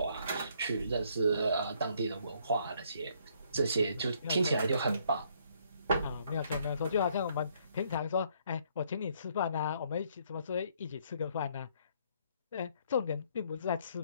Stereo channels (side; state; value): both; inverted; correlation -0.67